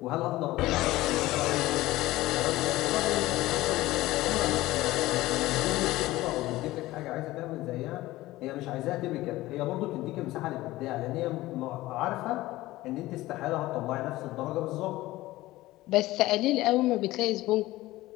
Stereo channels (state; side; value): quieter; right; 17.6 dB